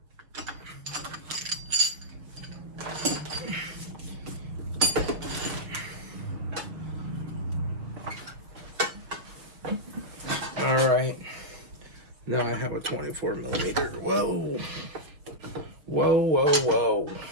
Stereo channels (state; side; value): late; left; 6.4 ms